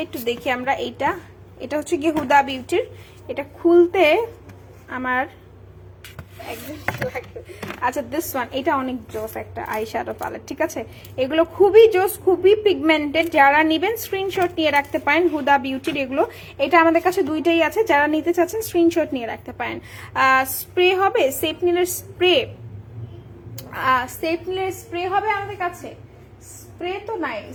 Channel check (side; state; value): both; identical; correlation 1.00